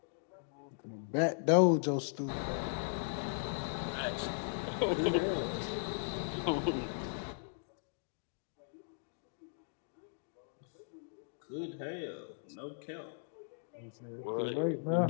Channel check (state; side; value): silent; right; digital silence